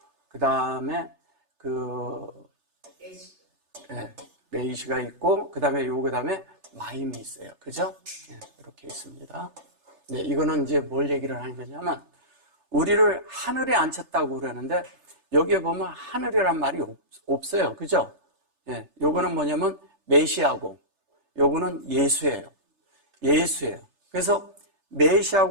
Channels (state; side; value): late; left; 3.3 ms